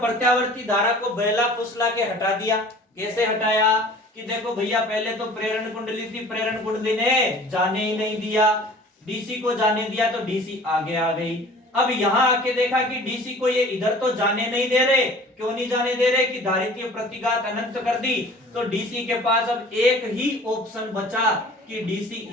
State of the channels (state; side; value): normal; both; correlation 0.46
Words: धारा को बहला फुसला के हटा दिया। कैसे हटाया? कि देखो भैया, पहले तो प्रेरण कुंडली थी, प्रेरण कुंडली ने जाने ही नहीं दिया, DC को जाने दिया तो DC आगे आ गई। अब यहाँ आके देखा कि DC को ये इधर तो जाने नहीं दे रहे। क्यों नहीं जाने दे रहे? कि धारितीय प्रतिघात अनंत कर दी, तो DC के पास अब एक ही ऑप्शन बचा कि DC